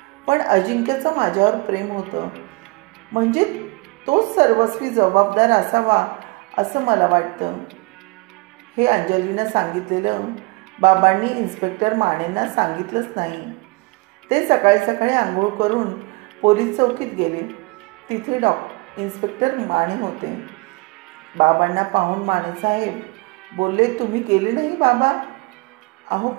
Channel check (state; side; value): quieter; left; 26.2 dB